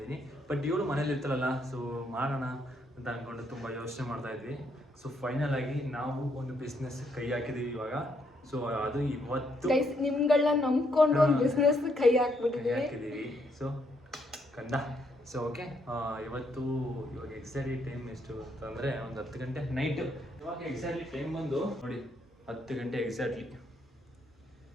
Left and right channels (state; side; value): normal; both; correlation 0.74